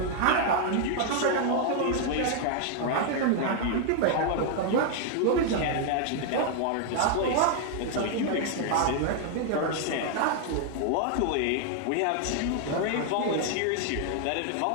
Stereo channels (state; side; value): different; both; correlation 0.00